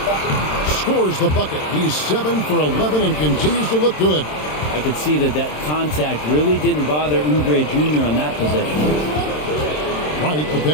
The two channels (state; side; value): late; right; 27 ms